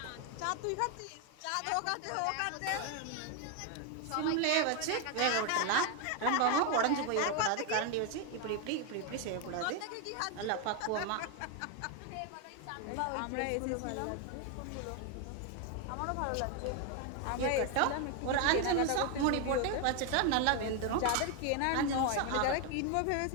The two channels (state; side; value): different; both; correlation 0.01